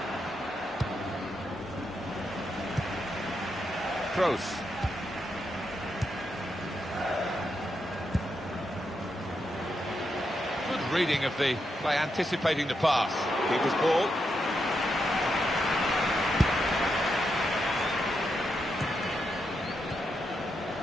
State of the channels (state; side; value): normal; both; correlation 0.83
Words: Kroos. Good reading of the play, anticipating the pass. Keeper's ball.